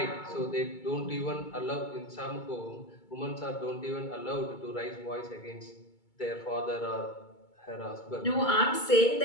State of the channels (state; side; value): late; right; 2.2 ms